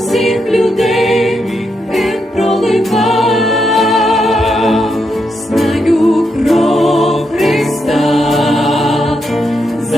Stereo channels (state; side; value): normal; both; correlation 0.82